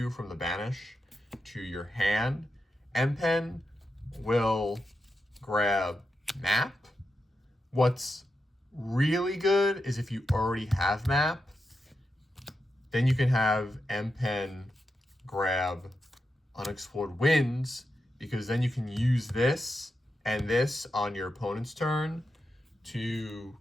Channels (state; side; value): normal; both; correlation 0.87